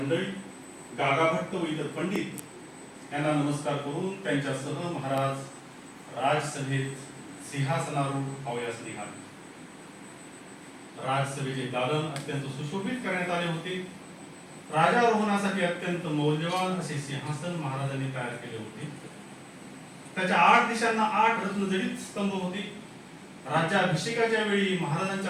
गागाभट्ट व इतर पंडित यांना नमस्कार करून त्यांच्यासह महाराज राजसभेत सिंहासनारूढ अवयास निघाले. राजसभेचे दालन अत्यंत सुशोभित करण्यात आले होते. राजारोहणासाठी अत्यंत मौल्यवान असे सिंहासन महाराजांनी तयार केले होते. त्याच्या 8 दिशांना 8 रत्नजडित स्तंभ होते. राज्याभिषेकाच्या वेळी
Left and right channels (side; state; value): both; identical; correlation 1.00